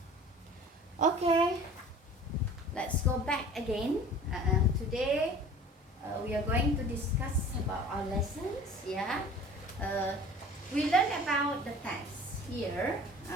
Okay, let's go back again. Today we are going to discuss about our lessons. Yeah, we learned about the text here.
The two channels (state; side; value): normal; both; correlation 0.44